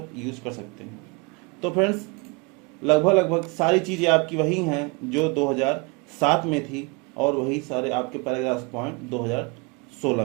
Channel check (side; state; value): left; quieter; 29.2 dB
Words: यूज़ कर सकते हैं। तो फ्रेंड्स लगभग सारी चीज़ें आपकी वही हैं जो 2007 में थी और वही सारे आपके पैराग्राफ पॉइंट 2016